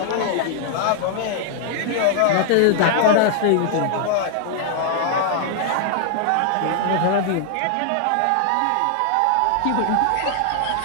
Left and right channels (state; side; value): different; both; correlation -0.01